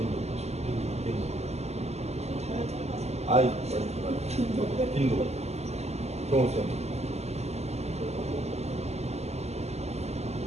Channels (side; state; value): left; late; 0.31 ms